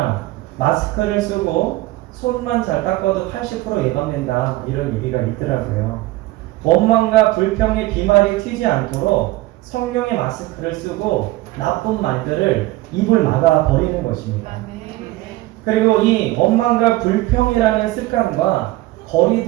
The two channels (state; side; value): quieter; left; 18.3 dB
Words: 마스크를 쓰고 손만 잘 닦아도 80% 예방된다, 이런 얘기가 있더라고요. 원망과 불평의 비말이 튀지 않도록 성령의 마스크를 쓰고 나쁜 말들을 입을 막아 버리는 것입니다. 그리고 이 원망과 불평이라는 습관과